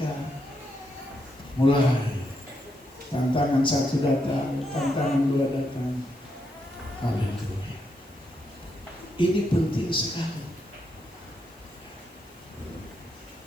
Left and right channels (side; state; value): left; noise; hiss, 29 dB below the sound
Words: mulai tantangan 1 datang, tantangan 2 datang. Haleluya. Ini penting sekali.